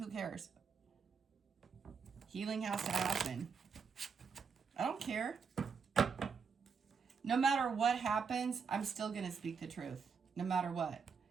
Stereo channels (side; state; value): left; quieter; 5.8 dB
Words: cares? Healing has to happen. I don't care. No matter what happens, I'm still going to speak the truth. No matter what.